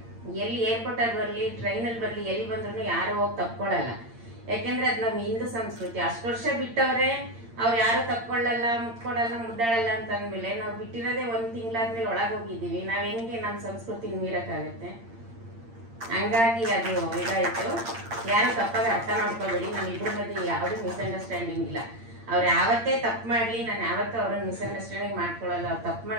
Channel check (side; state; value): left; late; 8.7 ms